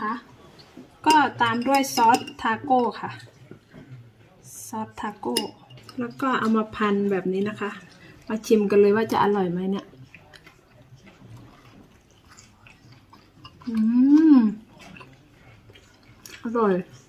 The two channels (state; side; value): identical; both; correlation 1.00